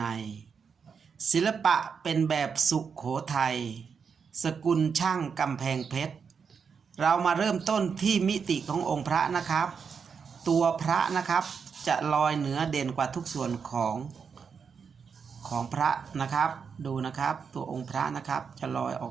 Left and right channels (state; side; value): quieter; left; 6.2 dB